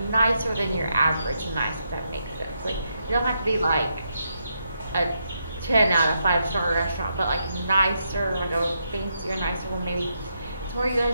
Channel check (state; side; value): inverted; both; correlation -0.81